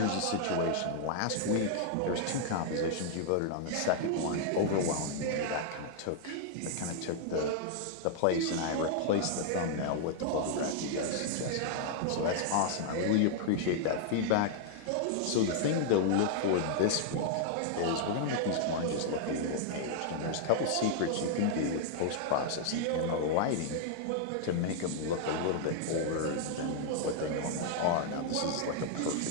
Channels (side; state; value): both; different; correlation -0.01